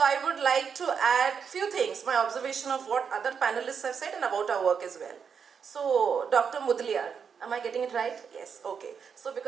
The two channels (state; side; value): quieter; left; 6.6 dB